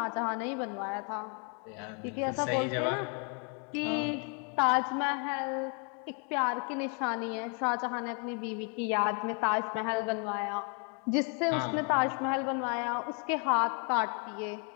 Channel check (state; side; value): quieter; right; 38.5 dB